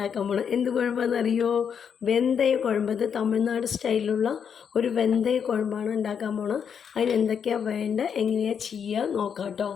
പോകുന്നത്. എന്ത് കുഴമ്പാണെന്ന് അറിയോ? വെന്തയ കുഴമ്പ്. ഇത് തമിഴ്നാട് സ്റ്റൈലിലുള്ള ഒരു വെന്തയ കുഴമ്പാണ് ഉണ്ടാക്കാൻ പോകുന്നത്. അതിന് എന്തൊക്കെയാണ് വേണ്ടത്, എങ്ങനെയാണ് ചെയ്യുക നോക്കാം കേട്ടോ.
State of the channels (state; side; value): quieter; right; 7.3 dB